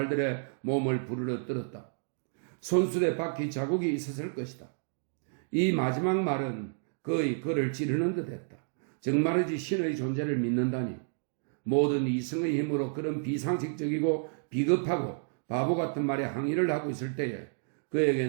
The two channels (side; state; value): left; silent; digital silence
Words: 몸을 부르러 떨었다. 손수레 바퀴 자국이 있었을 것이다. 이 마지막 말은 거의 그를 찌르는 듯 했다. 정말이지 신의 존재를 믿는다니. 모든 이성의 힘으로 그런 비상식적이고 비겁하고 바보 같은 말에 항의를 하고 있을 때에